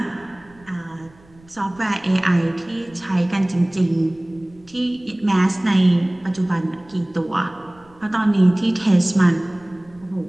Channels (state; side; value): noise; right; rumble, 28 dB below the sound